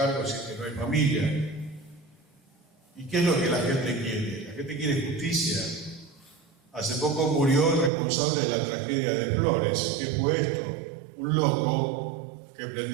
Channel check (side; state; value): left; drops out; at 7.9 s